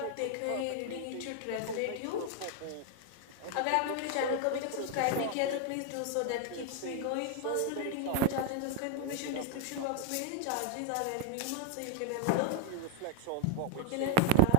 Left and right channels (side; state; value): both; different; correlation 0.01